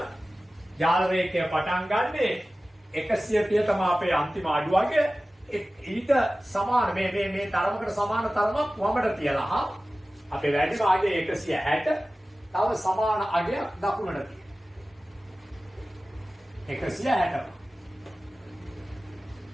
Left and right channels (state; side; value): normal; both; correlation 0.96